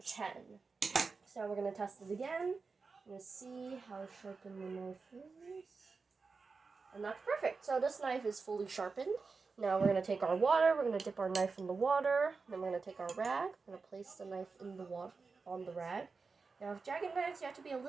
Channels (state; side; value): quieter; left; 4.5 dB